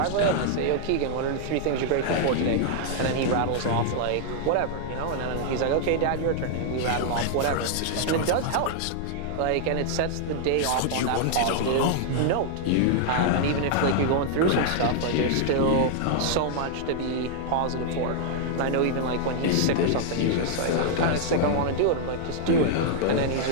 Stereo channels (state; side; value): different; both; correlation 0.00